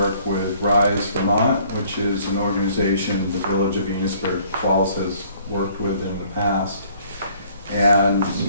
with Rise Vermont, which is an organization the Village of Enosburg Falls has worked with in the past. And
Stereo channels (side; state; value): both; inverted; correlation -0.60